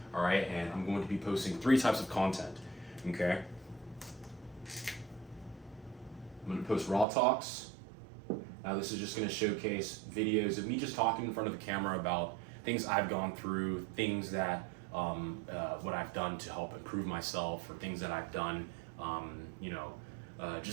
All right, and I'm going to be posting 3 types of content, okay? I'm going to post raw talks. Now this is just going to showcase videos of me just talking in front of the camera about things I've gone through, things that, what I've done to help improve myself, or things that I've done,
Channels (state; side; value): drops out; left; at 7.1 s